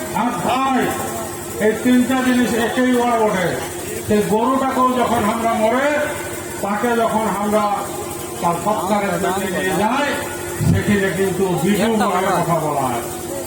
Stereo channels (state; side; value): identical; both; correlation 1.00